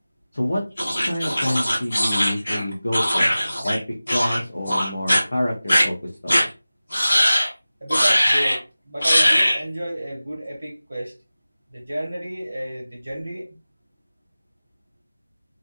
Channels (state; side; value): inverted; both; correlation -0.97